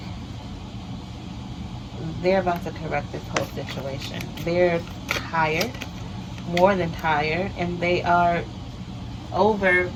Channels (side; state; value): both; identical; correlation 1.00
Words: they're about to correct this whole situation. They're tired, more than tired, and they are over